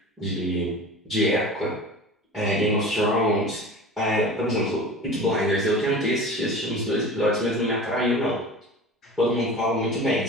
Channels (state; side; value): normal; both; correlation 0.36